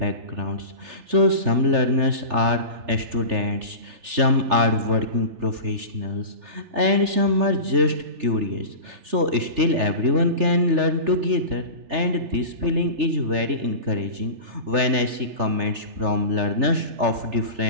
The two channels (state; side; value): late; left; 3.4 ms